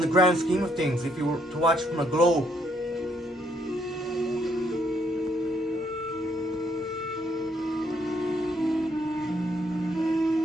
the grand scheme of things, if you were to watch from a globe.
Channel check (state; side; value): normal; both; correlation 0.71